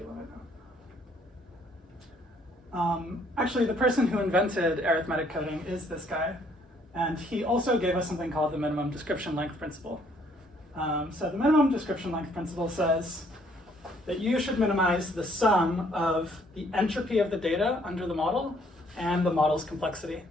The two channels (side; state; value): both; normal; correlation 0.65